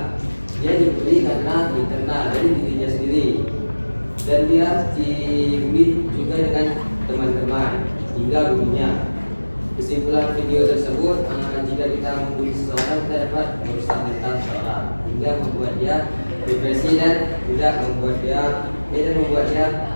Dia dibully karena internal dari dirinya sendiri, dan dia dibully juga dengan teman-teman hingga gurunya. Kesimpulan video tersebut, jika kita membuli seseorang, kita dapat merusak mental seseorang hingga membuat dia depresi dan membuat dia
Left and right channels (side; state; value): both; inverted; correlation -1.00